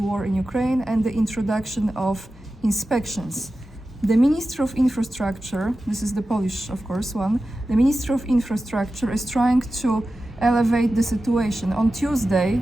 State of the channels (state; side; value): normal; both; correlation 0.93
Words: war in Ukraine, and the introduction of inspections. The Minister of Infrastructure, this is the Polish, of course, one, the Minister of Infrastructure is trying to elevate the situation. On Tuesday,